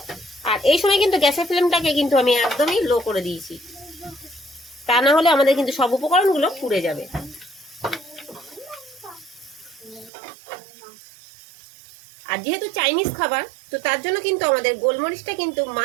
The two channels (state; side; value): drops out; left; at 10.1 s